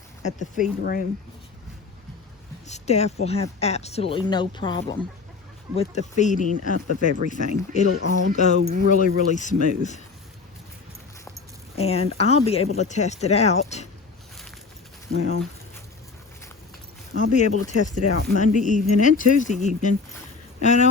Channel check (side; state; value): right; quieter; 4.4 dB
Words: at the feed room, Steph will have absolutely no problem with the feeding up of everything. It'll all go really, really smooth. And I'll be able to test it out. Well, I'll be able to test it out Monday evening and Tuesday evening. I